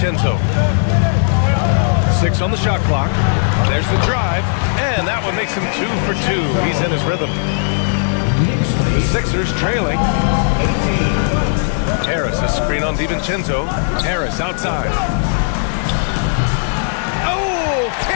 6 on the shot clock. There's the drive. And that one makes him 2 for 2. He's in his rhythm. The Sixers trailing. Harris, a screen on DiVincenzo. Harris outside. Oh,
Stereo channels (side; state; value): right; silent; 66 dB below the other